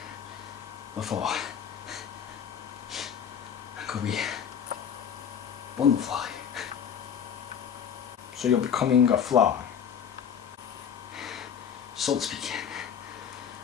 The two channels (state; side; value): quieter; right; 8.1 dB